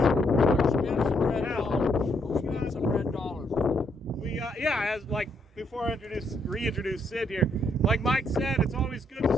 Spend some red dollars. Spend some red dollars. As like before I reintroduce Sid here, like Mike said, it's always good to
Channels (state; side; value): normal; both; correlation 0.74